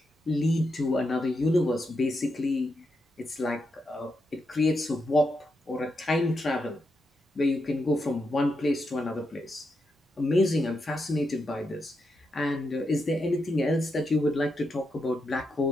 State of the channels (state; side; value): normal; both; correlation 0.84